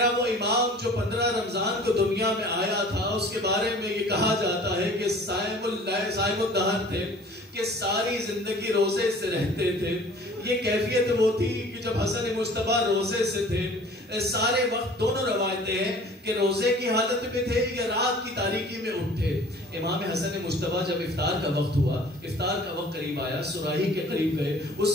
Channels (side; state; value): both; normal; correlation 0.48